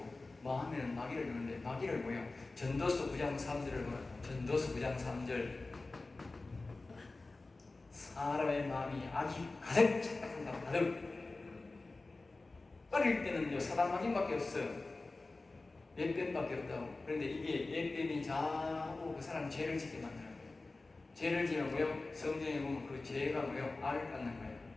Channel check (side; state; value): right; quieter; 3.4 dB